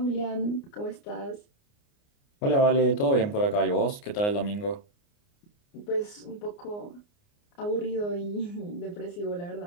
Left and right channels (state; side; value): late; right; 29 ms